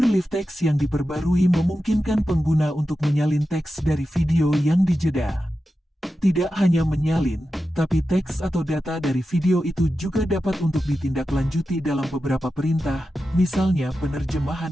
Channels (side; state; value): both; normal; correlation 0.92